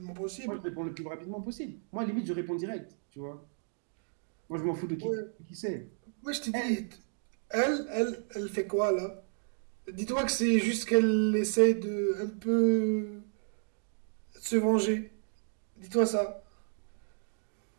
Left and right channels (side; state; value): left; silent; digital silence